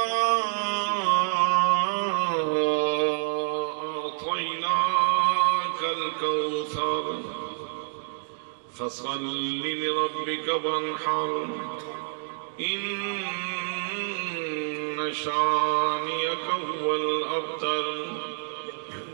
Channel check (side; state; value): left; silent; digital silence